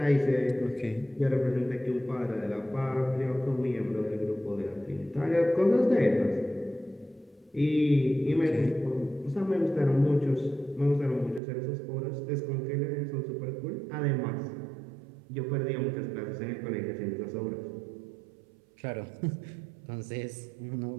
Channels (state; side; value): drops out; left; at 11.4 s